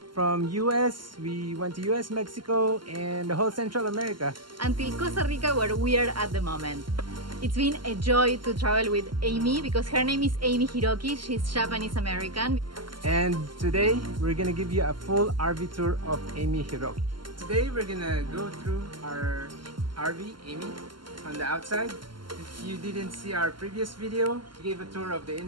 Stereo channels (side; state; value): left; late; 0.72 ms